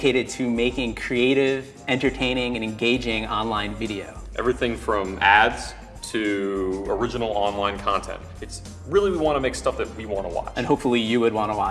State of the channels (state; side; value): identical; both; correlation 1.00